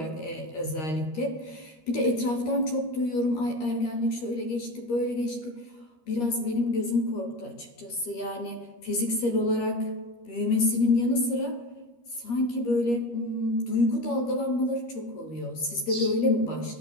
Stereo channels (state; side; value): late; right; 13 ms